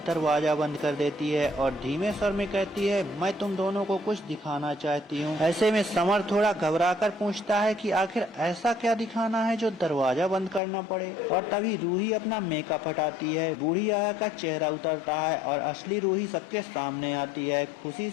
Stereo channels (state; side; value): drops out; right; at 10.6 s